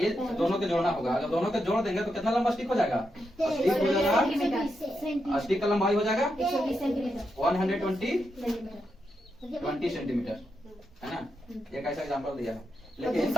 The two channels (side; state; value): both; normal; correlation 0.84